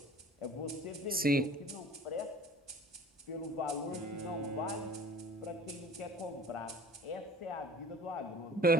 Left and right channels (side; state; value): both; normal; correlation 0.45